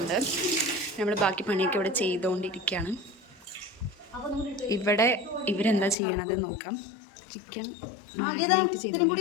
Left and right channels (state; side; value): drops out; right; at 6.0 s